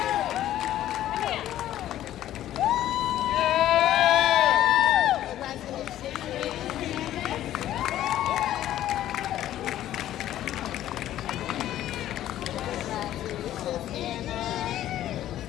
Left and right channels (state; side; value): quieter; right; 12.8 dB